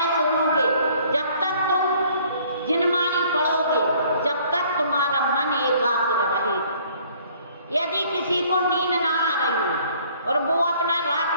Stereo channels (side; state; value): both; inverted; correlation -0.58